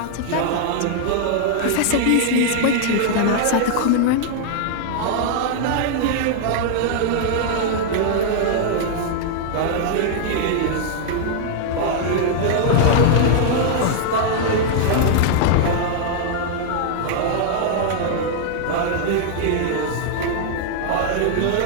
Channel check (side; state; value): both; different; correlation -0.01